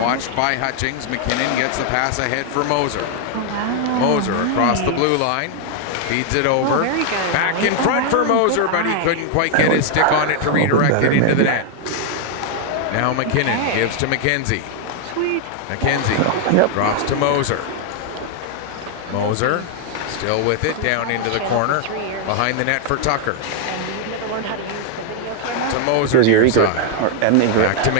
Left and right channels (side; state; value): both; different; correlation 0.00